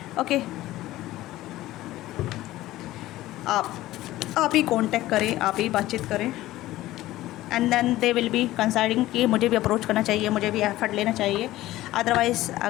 ओके, आप ही कांटेक्ट करें, आप ही बातचीत करें, and then they will be considering कि मुझे भी अप्रोच करना चाहिए, मुझे भी एफर्ट लेना चाहिए। अदरवाइज़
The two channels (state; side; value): quieter; right; 16.1 dB